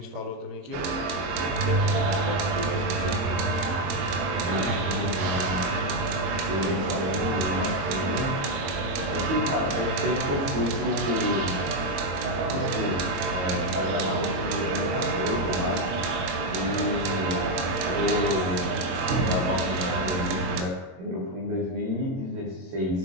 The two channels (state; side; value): late; left; 22 ms